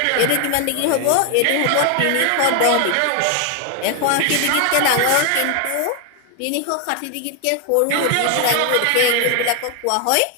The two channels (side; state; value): both; different; correlation 0.01